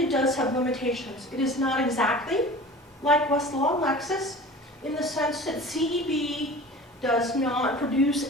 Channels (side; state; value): both; normal; correlation 0.39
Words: does have limitations. It is not exactly like Westlaw and Lexis in the sense that CEB does not produce